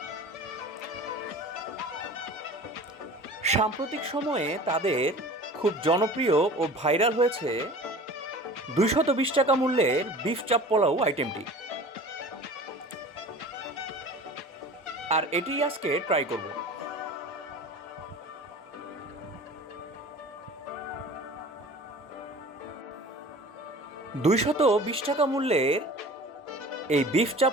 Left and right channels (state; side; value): normal; both; correlation 0.41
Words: সাম্প্রতিক সময়ে তাদের খুব জনপ্রিয় ও ভাইরাল হয়েছে 220 টাকা মূল্যের বিফ চাপ পোলাও আইটেমটি। আর এটি আজকে ট্রাই করব। 220 টাকা মূল্যের এই বিফ চাপ